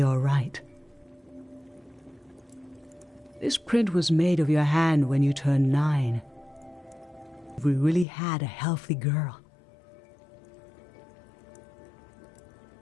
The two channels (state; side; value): drops out; right; at 8.1 s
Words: all right. This print was made of your hand when you turned 9. We really had a healthy girl.